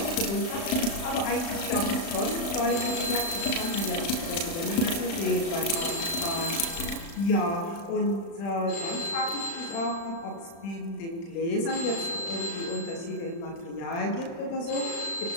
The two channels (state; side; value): late; right; 36 ms